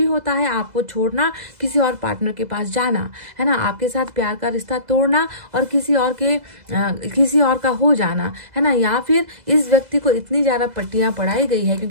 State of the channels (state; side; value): late; left; 2.0 ms